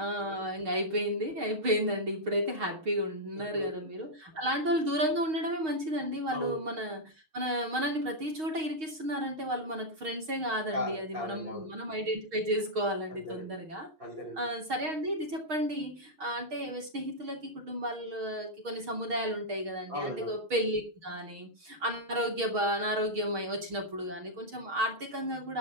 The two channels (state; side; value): late; left; 6.4 ms